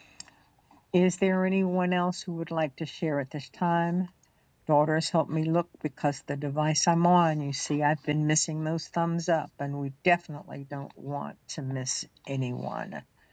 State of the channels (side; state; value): both; identical; correlation 1.00